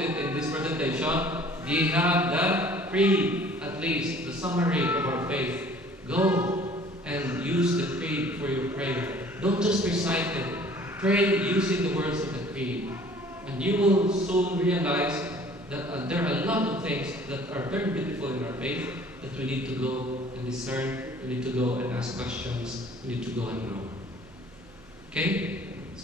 it in this presentation. We have the creed, at least, the summary of our faith. Go and use the creed for your prayer. Don't just recite it. Pray using the words of the creed. And you will soon realize that there are a lot of things that are very beautiful in our faith that we need to go and discern. We need to go and ask questions. We need to go and grow. Okay?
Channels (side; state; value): both; normal; correlation 0.52